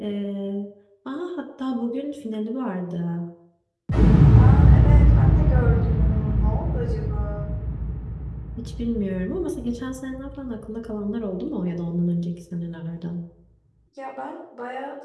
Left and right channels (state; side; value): identical; both; correlation 1.00